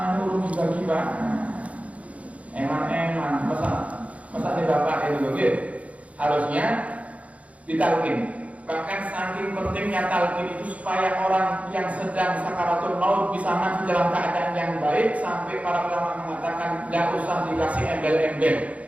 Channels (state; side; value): late; left; 0.066 ms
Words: urung juga eman, masa nih bapak itu, harusnya ditalkin. Bahkan saking pentingnya talkin itu supaya orang yang sedang sakaratul maut bisa mati dalam keadaan yang baik, sampai para ulama mengatakan tidak usah dikasih embel-embel.